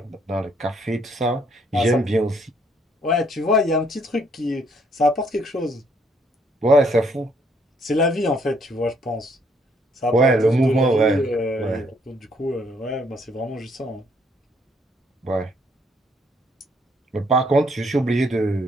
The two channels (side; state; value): both; normal; correlation 0.68